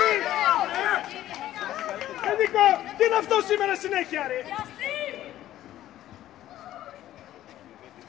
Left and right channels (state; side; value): quieter; right; 13.3 dB